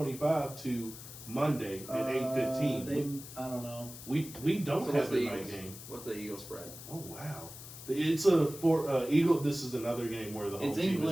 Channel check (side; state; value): left; noise; hiss, 14 dB below the sound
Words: to Monday at 8:15. I don't know. We don't So what's have the a night Eagles? game. What's the Eagles spread? Oh wow, it's a Eagle. This is another game where the home It's team in